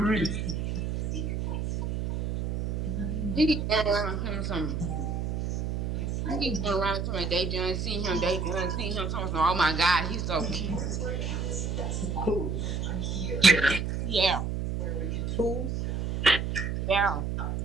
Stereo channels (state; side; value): noise; right; hum, 1 dB below the sound